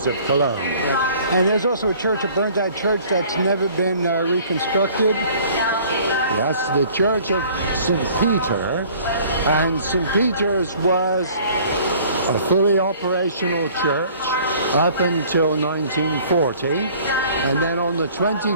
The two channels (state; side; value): inverted; both; correlation -0.53